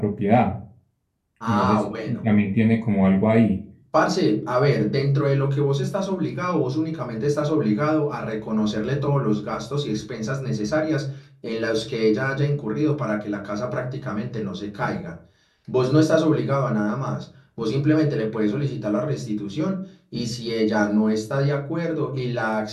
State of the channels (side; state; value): both; identical; correlation 1.00